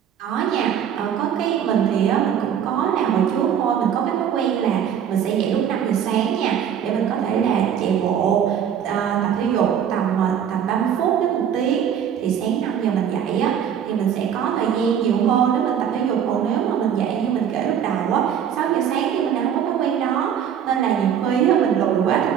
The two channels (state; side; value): quieter; left; 8.8 dB